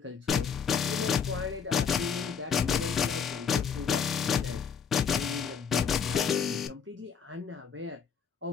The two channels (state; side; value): quieter; right; 6.8 dB